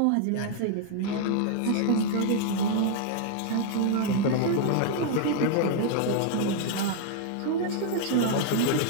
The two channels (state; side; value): different; both; correlation 0.00